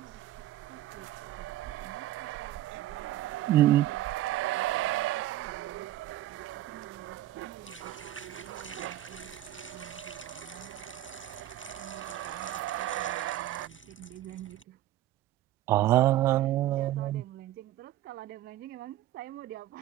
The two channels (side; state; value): left; quieter; 14.0 dB